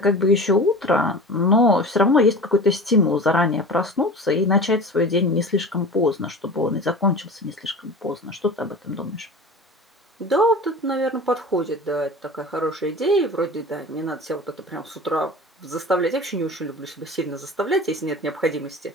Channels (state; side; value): normal; both; correlation 0.35